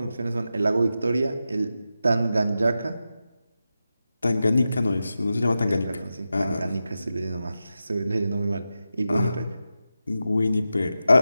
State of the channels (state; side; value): inverted; both; correlation -0.91